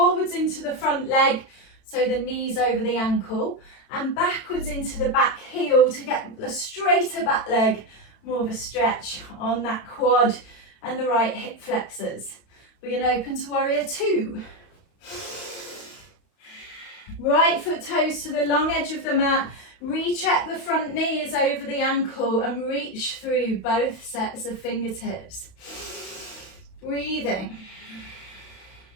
into the front leg, so the knees over the ankle, and backwards into the back heel to get the straighter back leg, more of a stretch on that quad and the right hip flexors. We're going to open to warrior two. Right foot toes to the long edge of the mat. Recheck the front knee is over the ankle and reach through both sets of fingertips. Breathing.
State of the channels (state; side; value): late; right; 31 ms